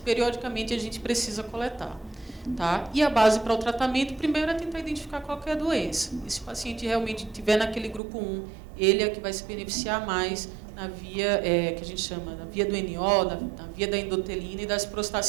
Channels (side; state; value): left; drops out; at 8.0 s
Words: periodicamente, a gente precisa coletar. Tá? E a base para o tratamento, primeiro, é tentar identificar qual que é a doença. E se o paciente realmente estiver naquele grupo 1, ele é que vai se beneficiar mais na via que a gente chama da via do NO, na via da endotelina e das